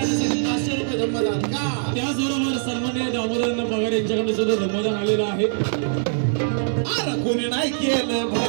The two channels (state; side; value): silent; left; digital silence